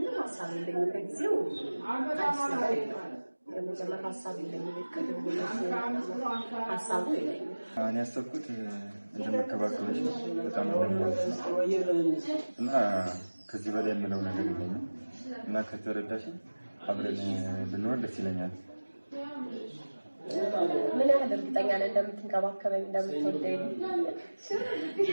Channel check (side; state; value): both; inverted; correlation -1.00